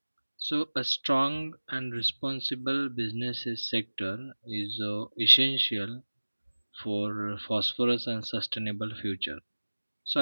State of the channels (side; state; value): both; inverted; correlation -1.00